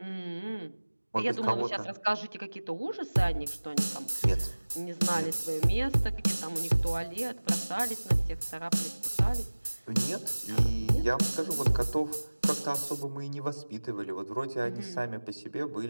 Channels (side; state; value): both; inverted; correlation -1.00